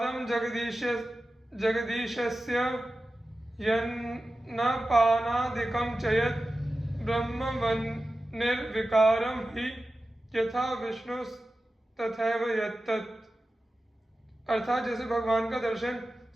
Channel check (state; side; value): normal; both; correlation 0.94